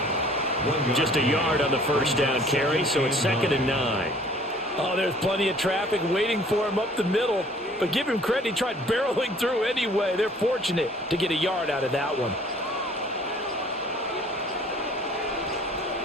Just a yard on the first down carry, so it's second and 9. Oh, there's plenty of traffic waiting for him up the middle. But give him credit, he tried barreling through anyway. They're fortunate to get a yard out of that one.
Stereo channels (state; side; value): normal; both; correlation 0.54